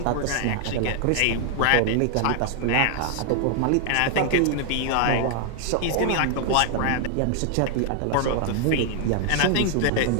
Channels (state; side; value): different; both; correlation 0.00